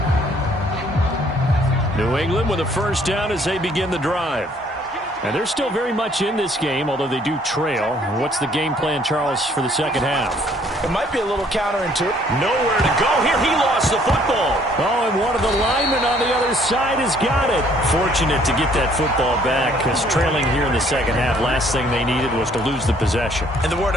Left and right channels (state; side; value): normal; both; correlation 0.62